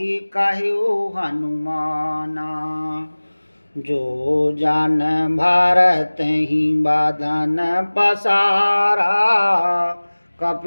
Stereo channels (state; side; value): inverted; both; correlation -1.00